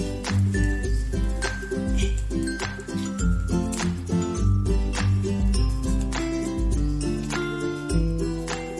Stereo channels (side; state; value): both; identical; correlation 1.00